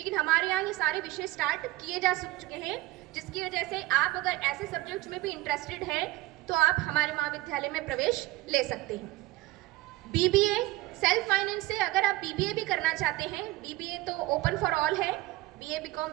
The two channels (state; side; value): quieter; left; 17.9 dB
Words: हमारे यहाँ ये सारे विषय स्टार्ट किए जा चुके हैं। जिसकी वजह से आप अगर ऐसे सब्जेक्ट्स में भी इंटरेस्टेड हैं तो आप हमारे महाविद्यालय में प्रवेश ले सकते हैं। बीबीए सेल्फ फाइनेंस से अगर आप बीबीए भी करना चाहते हैं, बीबीए तो ओपन फॉर ऑल है, बीए बीकॉम